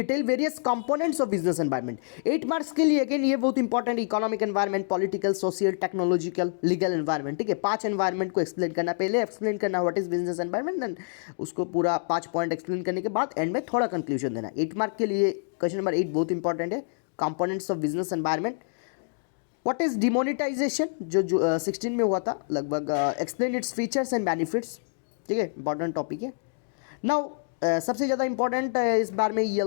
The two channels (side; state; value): right; silent; digital silence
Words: various components of business environment. 8 marks के लिए अगेन ये बहुत important, economic environment, political, social, technological, legal environment, ठीक है। 5 एनवायरनमेंट को एक्सप्लेन करना, पहले एक्सप्लेन करना what is business environment, then उसको पूरा 5 पॉइंट एक्सप्लेन करने के बाद एंड में थोड़ा कंक्लूजन देना। 8 मार्क के लिए क्वेश्चन नंबर 8 बहुत इंपॉर्टेंट है, components of business environment. What is demonetisation, जो 16 में हुआ था लगभग, explain its features and benefits, ठीक है, इंपॉर्टेंट टॉपिक है। नाउ सबसे ज़्यादा इंपॉर्टेंट इस बार में